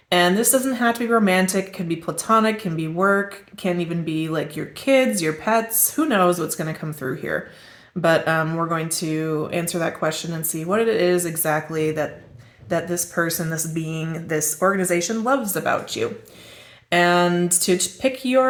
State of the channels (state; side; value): identical; both; correlation 1.00